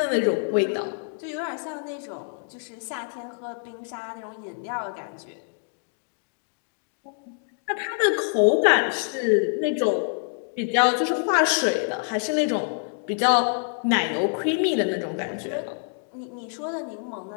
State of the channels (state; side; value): silent; right; 57 dB below the other